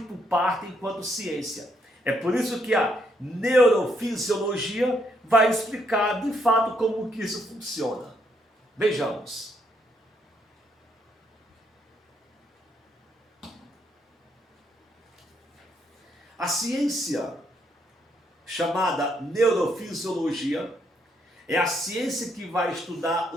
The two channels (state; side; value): normal; both; correlation 0.74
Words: parte enquanto ciência. É por isso que a neurofisiologia vai explicar de fato como que isso funciona. Vejamos. A ciência chamada neurofisiologia é a ciência que vai estudar